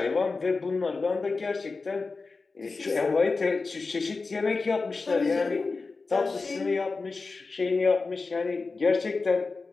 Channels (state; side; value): quieter; right; 4.0 dB